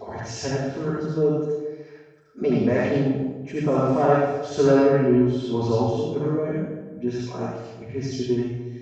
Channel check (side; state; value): both; identical; correlation 1.00